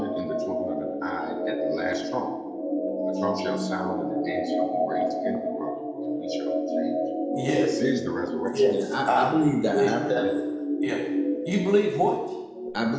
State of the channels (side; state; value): both; identical; correlation 1.00